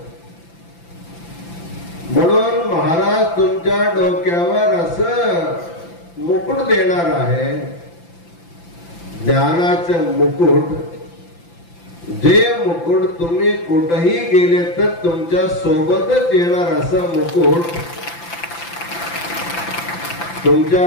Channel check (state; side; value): late; right; 5.9 ms